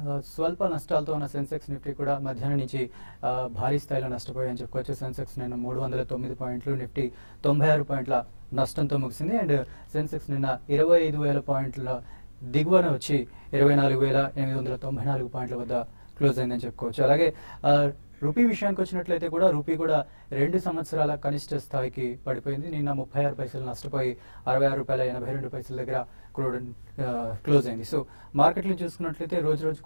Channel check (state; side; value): inverted; both; correlation -1.00